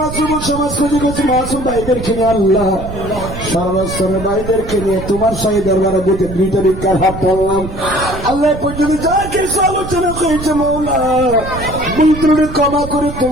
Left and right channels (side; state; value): right; noise; rumble, 9 dB below the sound